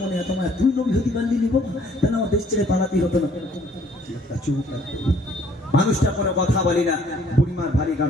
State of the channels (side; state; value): both; normal; correlation 0.60